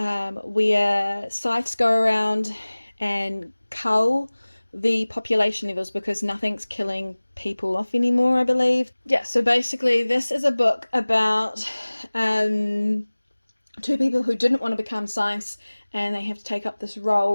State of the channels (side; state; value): both; inverted; correlation -1.00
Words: scythes go around and cull the population levels because nothing's killing people off anymore, I believe. Yeah, so basically this is a book about two people who didn't want to become scythes, and they have to take up this